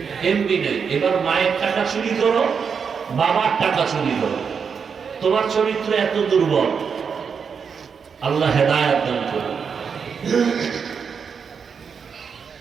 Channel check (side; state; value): left; quieter; 6.3 dB